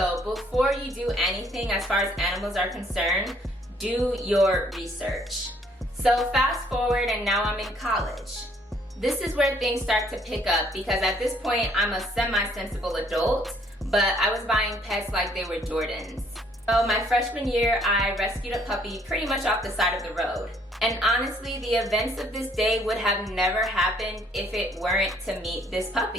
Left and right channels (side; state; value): both; normal; correlation 0.64